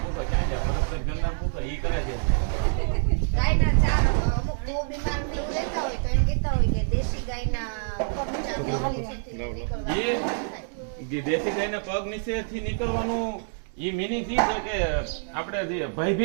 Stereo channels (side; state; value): left; silent; digital silence